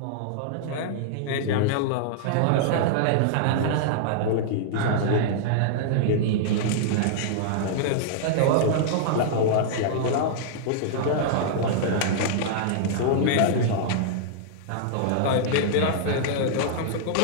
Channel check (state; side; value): different; both; correlation -0.01